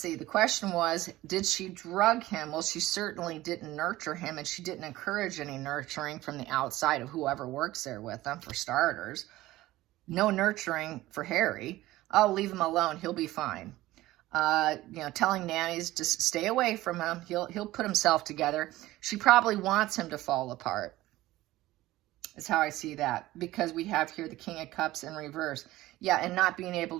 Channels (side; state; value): left; quieter; 16.8 dB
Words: The question was, did she drug him? Well, she certainly didn't nurture him, and she didn't encourage any nurturing from the outside of whoever works there with him, for starters. No nurturing for Harry. Oh, leave him alone. He'll be fine. Telling nannies to stay away from him. He'll put himself together. She probably wants him to fall apart. Is how I see that, because we have here the King of Cups in reverse. Yeah, and not being able